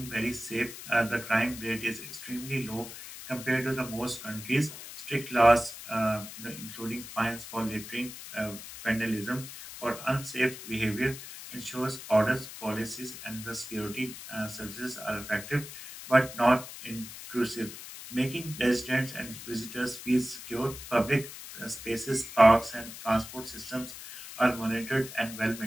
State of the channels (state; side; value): noise; left; hiss, 12 dB below the sound